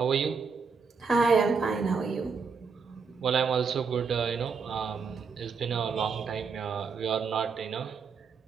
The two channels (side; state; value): left; quieter; 5.3 dB